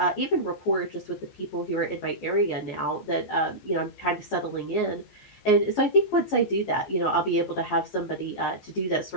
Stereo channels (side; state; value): right; late; 14 ms